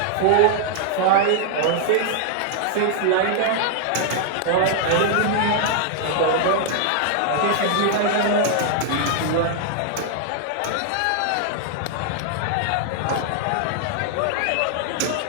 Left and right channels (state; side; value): different; both; correlation 0.00